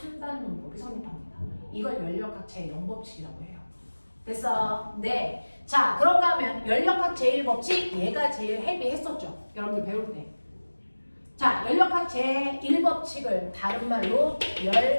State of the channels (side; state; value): both; inverted; correlation -1.00